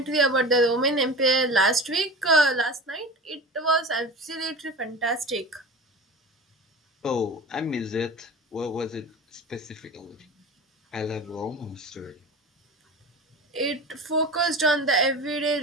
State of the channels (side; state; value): both; normal; correlation 0.32